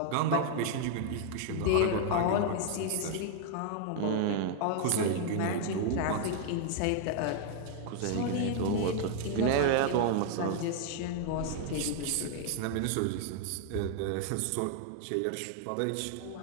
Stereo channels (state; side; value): different; both; correlation 0.00